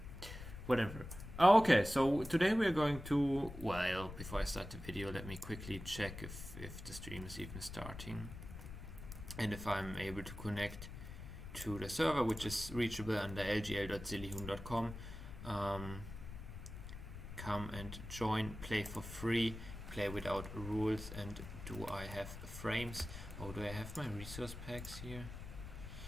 whatever. Okay, so today we're going to, well, before I start the video, let me quickly check if the stream is even starting and if I'm able to connect to the server, which is reachable under lgl.sillyhoon.com. Come and join, play for free, play without rules. And do I have frames? Oh, do I have my resource packs here?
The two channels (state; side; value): noise; left; rumble, 10 dB below the sound